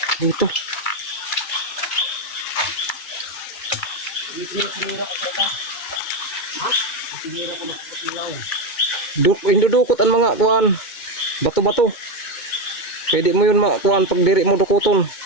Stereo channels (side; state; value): right; late; 2.3 ms